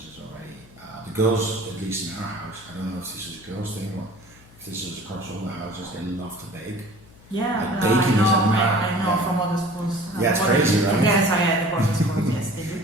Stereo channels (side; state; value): left; noise; hum, 24 dB below the sound